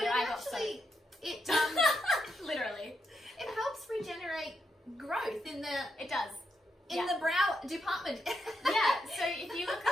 But I got soaked. It literally. It helps regenerate growth in the. It does. In the brow department. Yeah, so if you look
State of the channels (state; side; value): normal; both; correlation 0.82